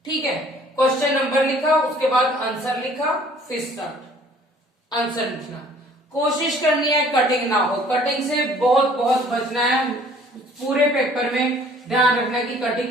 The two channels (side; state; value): both; normal; correlation 0.55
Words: ठीक है, क्वेश्चन नंबर लिखा, उसके बाद आंसर लिखा, फिर स्टार्ट आंसर लिखना। कोशिश करनी है कटिंग ना हो, कटिंग से बहुत बहुत बचना है। पूरे पेपर में ध्यान रखना है कि